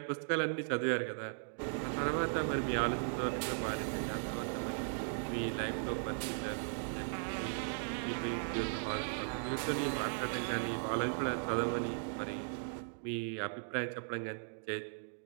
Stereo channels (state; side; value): silent; left; digital silence